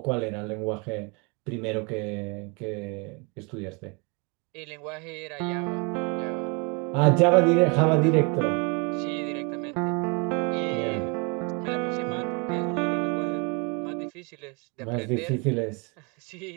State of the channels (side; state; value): left; quieter; 32.0 dB